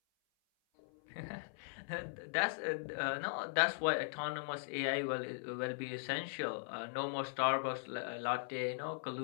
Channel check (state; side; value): silent; right; 51 dB below the other